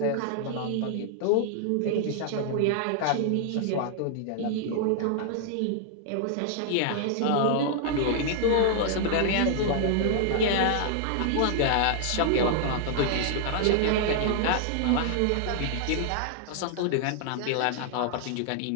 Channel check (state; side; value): different; both; correlation -0.01